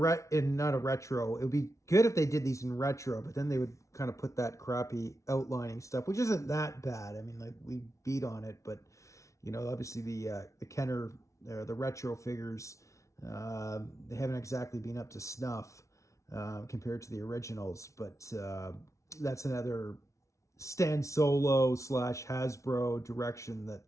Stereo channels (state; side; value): late; right; 0.14 ms